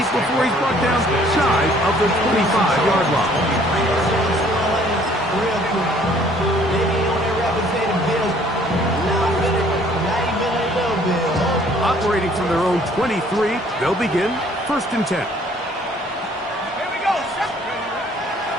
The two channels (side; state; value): both; normal; correlation 0.59